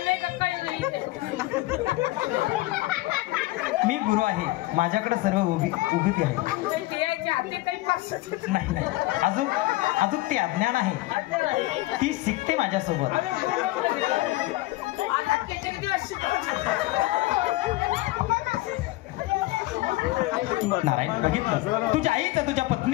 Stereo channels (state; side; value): quieter; right; 19.1 dB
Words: नाही का काही. मी गुरु आहे. माझ्याकडे सर्व उभी आहे. नाही अजून ते अज्ञान आहे. ती शिकते माझ्यासोबत. नारायण बघितलं तुझ्या आईचं तुझ्या